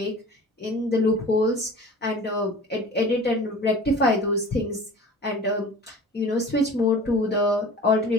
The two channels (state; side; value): normal; both; correlation 0.41